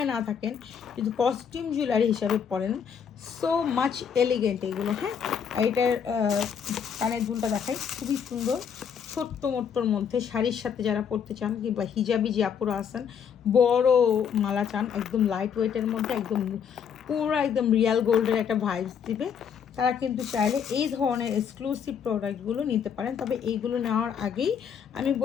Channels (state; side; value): quieter; right; 7.5 dB